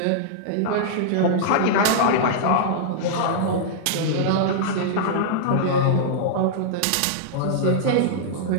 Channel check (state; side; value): different; both; correlation -0.02